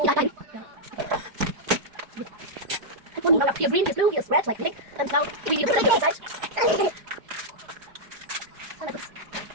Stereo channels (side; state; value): left; late; 4.9 ms